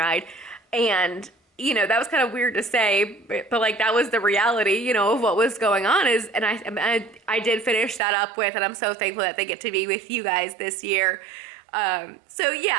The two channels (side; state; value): left; drops out; at 8.0 s